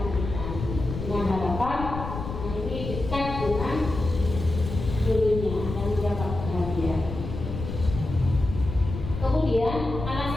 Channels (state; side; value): noise; left; rumble, 7 dB below the sound